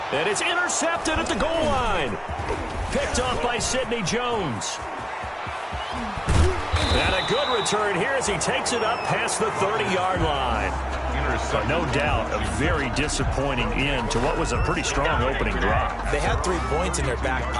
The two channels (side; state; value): both; identical; correlation 1.00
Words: And it's intercepted at the goal line. Picked off by Sidney Jones. And a good return here as he takes it up past the 30-yard line. But no doubt, a very disappointing end to what was a pretty strong opening drive. They had 3 points in their back